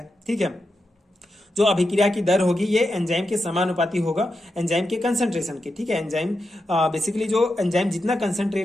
ठीक है, जो अभिक्रिया की दर होगी ये एंजाइम के समानुपाती होगा एंजाइम के कंसंट्रेशन के। ठीक है, एंजाइम बेसिकली जो एंजाइम जितना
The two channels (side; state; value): both; normal; correlation 0.87